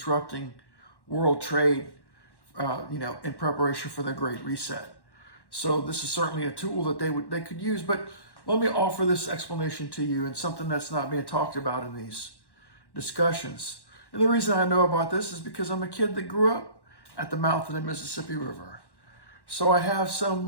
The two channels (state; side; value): late; right; 1.1 ms